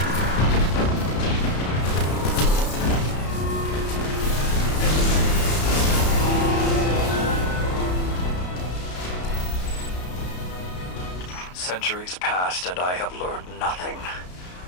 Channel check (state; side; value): late; right; 33 ms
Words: Centuries passed and I have learned nothing.